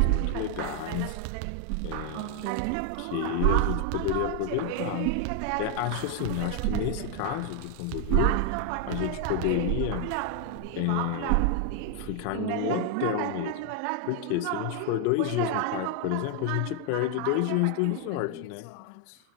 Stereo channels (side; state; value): both; different; correlation 0.01